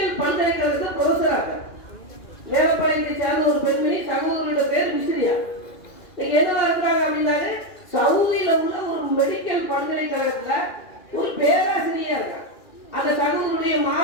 பல்கலைக்கழகத்தில் ப்ரொஃபஸரா இருக்காங்க. மேலப்பாளையத்தை சார்ந்த ஒரு பெண்மணி, சகோதரியோட பேர் மிஸ்ரியா. இன்னைக்கு என்னவா இருக்காங்க அப்படின்னாரு, சவுதியில உள்ள ஒரு மெடிக்கல் பல்கலைக்கழகத்துல ஒரு பேராசிரியரா இருக்காங்க. அந்த சகோதரருடைய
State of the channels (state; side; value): late; right; 2.4 ms